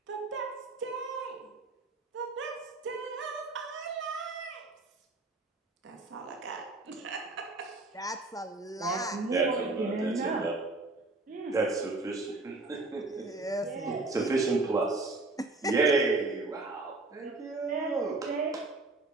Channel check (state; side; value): quieter; left; 3.2 dB